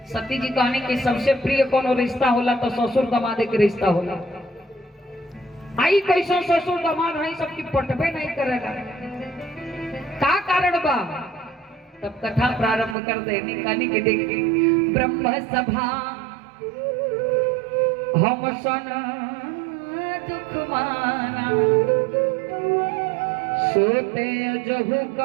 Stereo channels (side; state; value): left; drops out; at 13.0 s